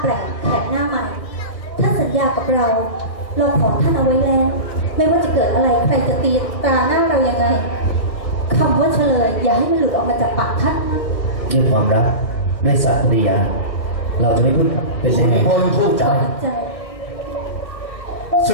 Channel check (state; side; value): late; right; 1.6 ms